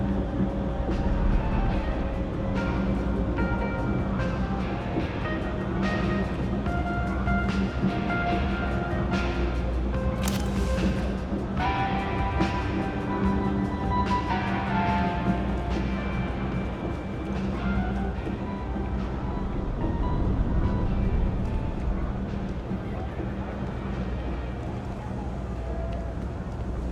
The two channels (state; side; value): identical; both; correlation 1.00